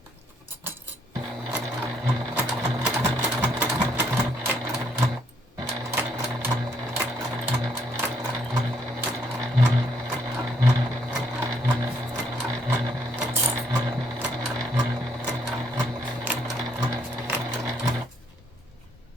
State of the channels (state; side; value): normal; both; correlation 0.71